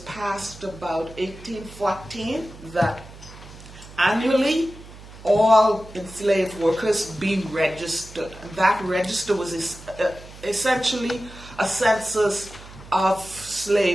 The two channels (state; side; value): noise; right; hum, 18 dB below the sound